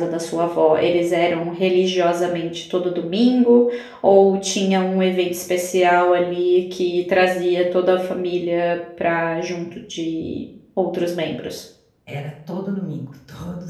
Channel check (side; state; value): both; identical; correlation 1.00